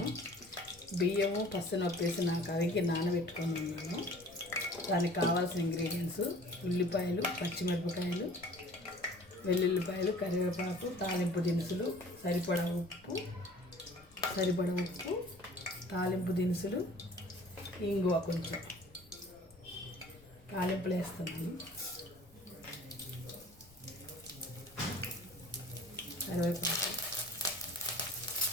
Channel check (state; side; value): noise; left; rumble, 25 dB below the sound